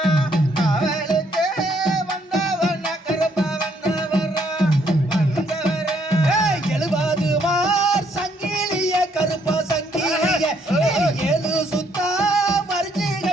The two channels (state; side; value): normal; both; correlation 0.69